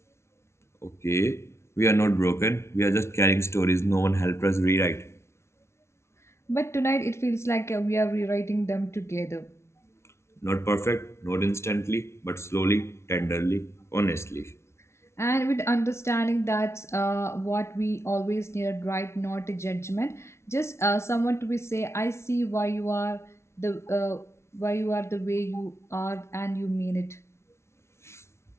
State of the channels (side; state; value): right; late; 0.13 ms